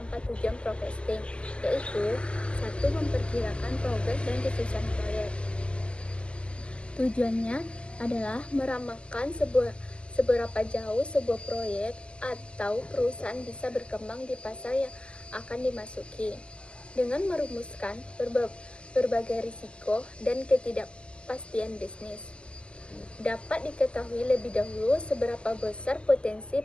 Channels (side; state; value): right; late; 0.058 ms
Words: tujuan forecasting, yaitu 1. Memperkirakan progres dan kesuksesan proyek. Tujuannya adalah meramalkan seberapa jauh sebuah proyek atau perusahaan bisa berkembang di pasar yang akan dimasuki, dengan merumuskan berbagai risiko dan ketidakpastian bisnis. Dapat diketahui lebih dahulu seberapa besar potensi